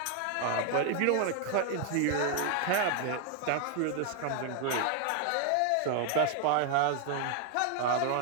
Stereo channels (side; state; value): both; different; correlation 0.00